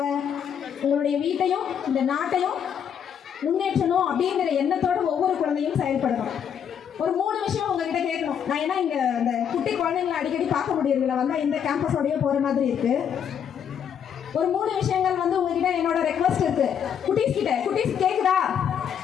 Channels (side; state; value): right; quieter; 8.3 dB